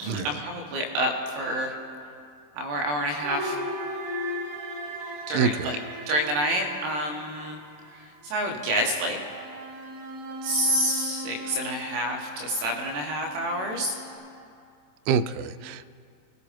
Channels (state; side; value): late; left; 27 ms